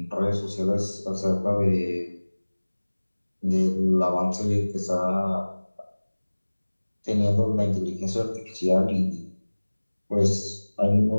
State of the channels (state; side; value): inverted; both; correlation -1.00